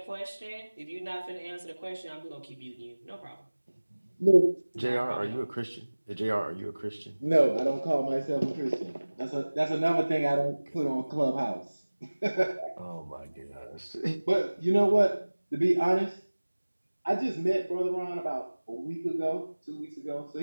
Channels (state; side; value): inverted; both; correlation -1.00